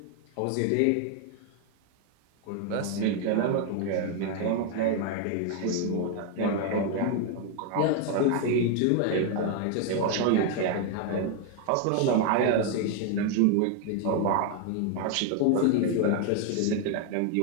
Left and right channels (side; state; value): both; different; correlation 0.00